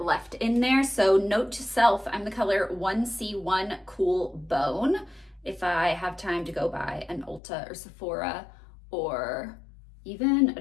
in there. So note to self, I'm the color 1C1 Cool Bone. If I have time to go by an Ulta or Sephora or even a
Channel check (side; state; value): right; drops out; at 7.4 s